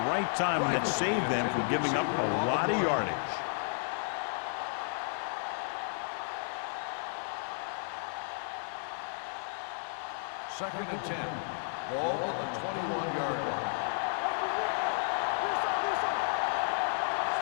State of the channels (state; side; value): silent; right; digital silence